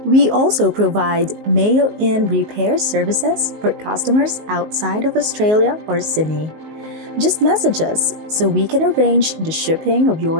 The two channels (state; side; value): late; left; 19 ms